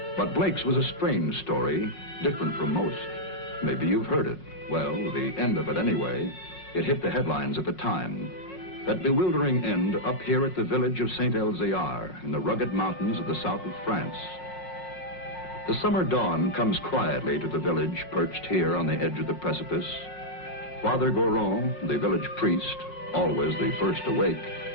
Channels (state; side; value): late; right; 5.6 ms